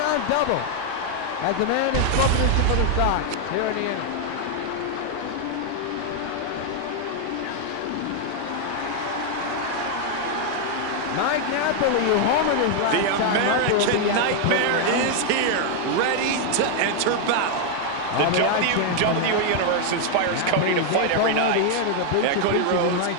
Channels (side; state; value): both; different; correlation 0.00